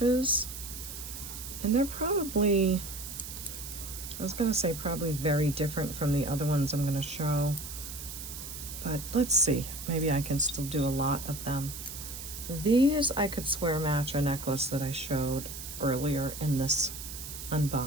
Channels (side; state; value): right; noise; hiss, 10 dB below the sound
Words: And they're probably, I was gonna say probably very different from the other ones I'm gonna show. But let's see, maybe I can still do a lot of them. These I could swear match a necklace that I showed earlier in this